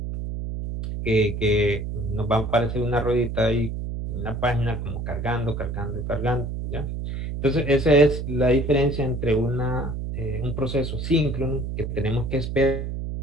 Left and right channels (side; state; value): right; noise; hum, 4 dB below the sound